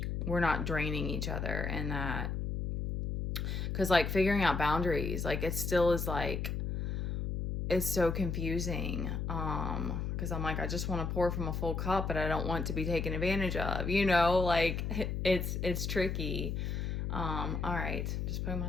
we're not draining each other. And that, because like figuring out boundaries, like it still is like, it's so confusing, because I'm like, I just want to pour from a full cup, but I don't want to be taken advantage of, like it's tricky. All right, just putting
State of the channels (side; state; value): left; noise; hum, 2 dB below the sound